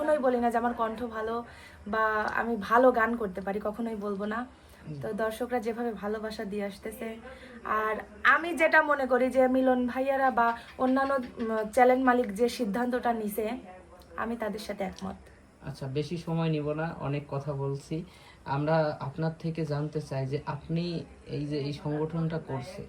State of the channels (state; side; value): identical; both; correlation 1.00